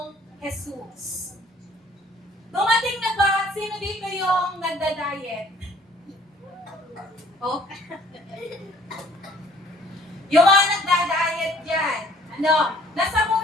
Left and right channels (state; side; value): normal; both; correlation 0.57